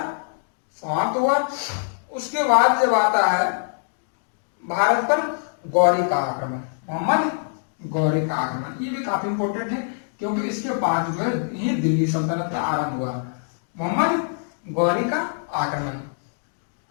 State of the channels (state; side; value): silent; right; digital silence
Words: समाप्त हुआ। उसके बाद जब आता है भारत पर गौरी का आक्रमण, मोहम्मद गौरी का आक्रमण, ये भी काफी इंपॉर्टेंट है, क्योंकि इसके बाद जो है ये दिल्ली सल्तनत का आरंभ हुआ। मोहम्मद गौरी का आक्रमण,